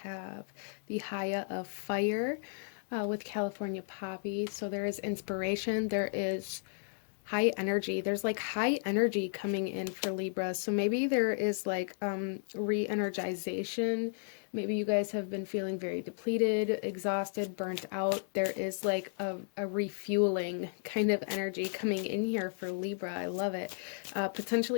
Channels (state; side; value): silent; right; digital silence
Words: the Haya of Fire with California Poppy. So there is inspiration, there is high energy. There's like high energy coming in for Libra. So maybe there is like re-energization. Maybe you guys have been feeling very depleted, exhausted, burnt out. There is like a refueling kind of energy coming in here for Libra. I love it.